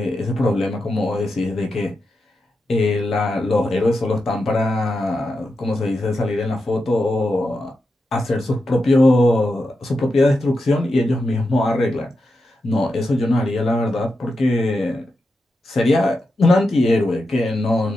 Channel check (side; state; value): both; normal; correlation 0.88